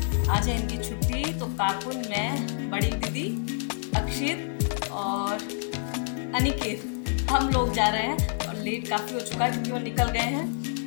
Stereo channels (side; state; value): right; silent; digital silence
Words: आज है इनकी छुट्टी, तो काकुन, मैं, बड़ी दीदी, अक्षित और अनिकेत, हम लोग जा रहे हैं। और लेट काफ़ी हो चुका है क्योंकि वो निकल गए हैं।